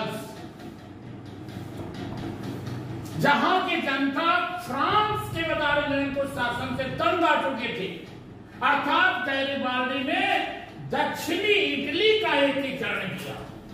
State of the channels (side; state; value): both; identical; correlation 1.00